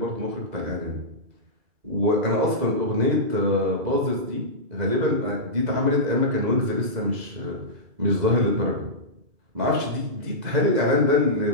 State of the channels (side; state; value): left; late; 2.0 ms